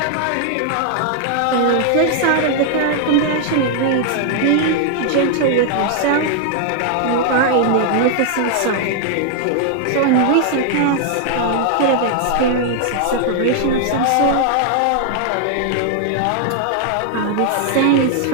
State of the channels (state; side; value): different; both; correlation 0.00